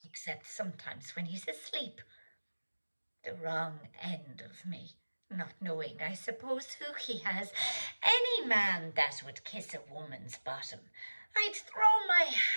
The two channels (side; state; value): both; inverted; correlation -1.00